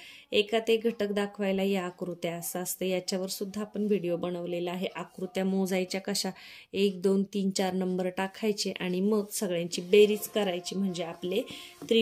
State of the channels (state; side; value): identical; both; correlation 1.00